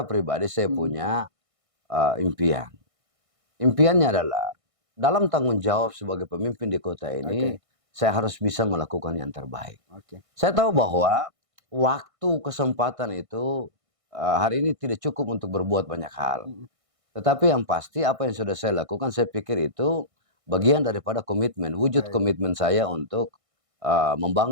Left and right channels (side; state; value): left; late; 1.6 ms